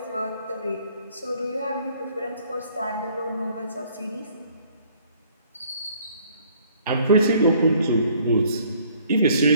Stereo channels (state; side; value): inverted; both; correlation -0.60